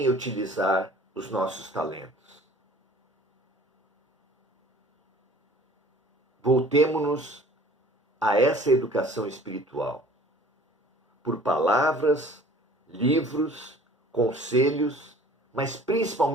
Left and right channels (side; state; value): both; normal; correlation 0.50